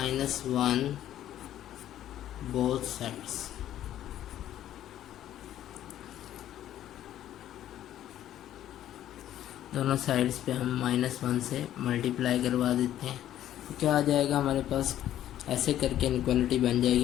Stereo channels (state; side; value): quieter; right; 12.1 dB